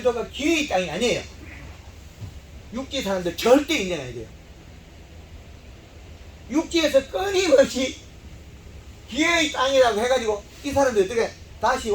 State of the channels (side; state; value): both; identical; correlation 1.00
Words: 기회의 땅이 아니에요. 육지 사람들 절대 인정해야 돼요. 육지에서 끊임없이 기회의 땅이라고 해가지고 이 사람들 어떻게 다시